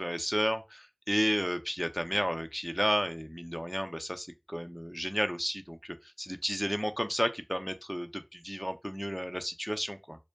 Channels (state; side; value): identical; both; correlation 1.00